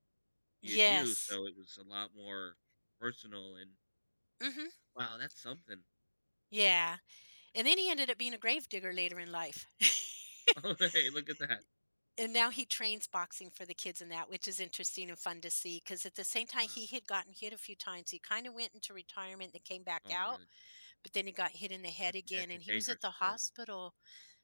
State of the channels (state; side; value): inverted; both; correlation -1.00